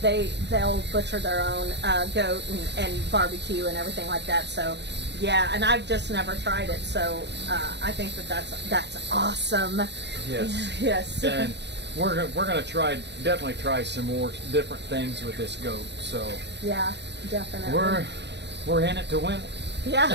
they'll butcher their own goat and barbecue and everything like that. So yeah, and I've just never tried it. So I think that's awesome. Yes. Yes. And we're gonna definitely try some more different things with this goat. So Yeah, definitely. we're in it to win. Yeah.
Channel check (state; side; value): late; left; 0.50 ms